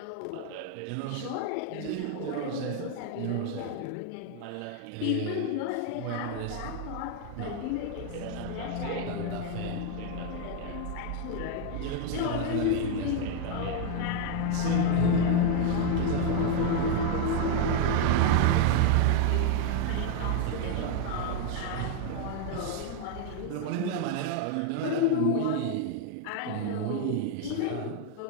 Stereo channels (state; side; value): different; both; correlation 0.00